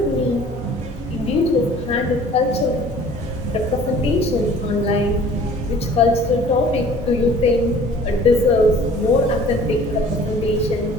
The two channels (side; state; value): both; normal; correlation 0.50